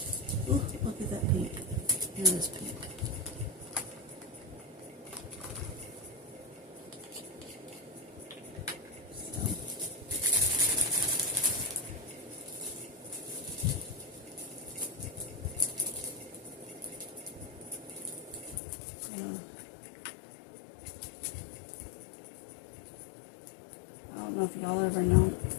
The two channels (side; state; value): right; drops out; at 18.6 s